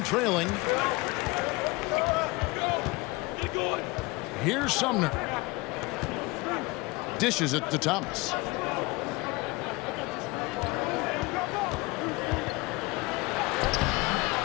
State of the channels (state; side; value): quieter; right; 23.7 dB